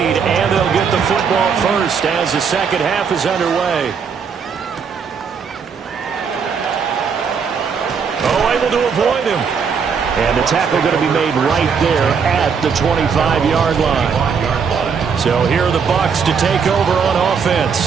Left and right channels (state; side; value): quieter; left; 6.2 dB